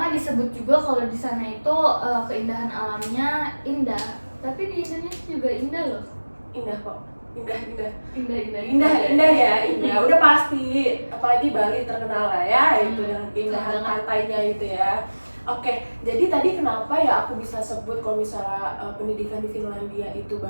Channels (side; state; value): both; inverted; correlation -1.00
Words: disebut juga kalau di sana itu keindahan alamnya indah. Tapi di Indonesia juga indah loh. Indah kok. Indah. Indah Indah. Udah pasti. Apalagi Bali terkenal lah ya itu dengan keindahan pantainya itu ya. Oke, jadi tadi kenapa ya aku bisa sebut kalau misalnya pendidikan di Finlandia itu